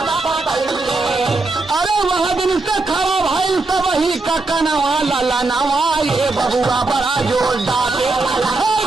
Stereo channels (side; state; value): left; quieter; 3.4 dB